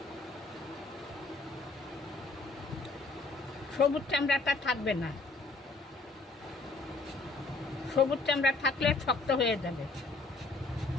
সবুজ চামড়াটা থাকবে না, সবুজ চামড়া থাকলে শক্ত হয়ে যাবে।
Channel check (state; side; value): quieter; right; 3.5 dB